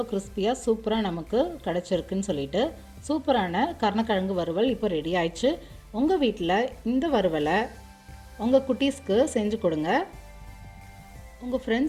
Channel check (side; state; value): both; identical; correlation 1.00